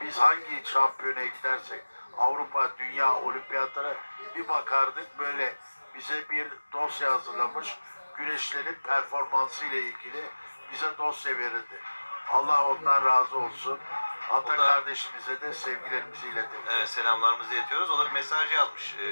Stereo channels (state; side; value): inverted; both; correlation -1.00